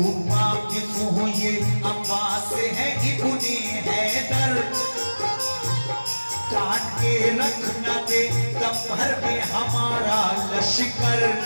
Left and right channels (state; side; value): inverted; both; correlation -1.00